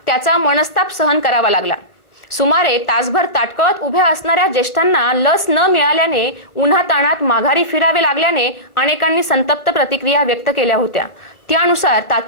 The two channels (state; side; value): late; right; 1.4 ms